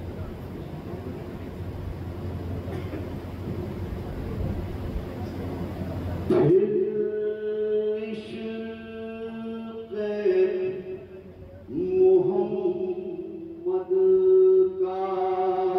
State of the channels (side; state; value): both; identical; correlation 1.00